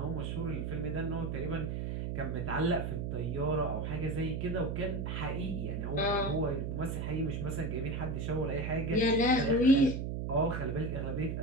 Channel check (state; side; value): noise; right; hum, 2 dB below the sound